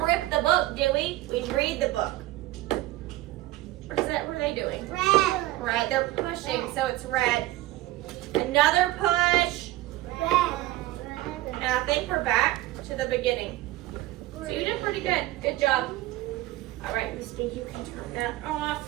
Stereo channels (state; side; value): quieter; left; 16.9 dB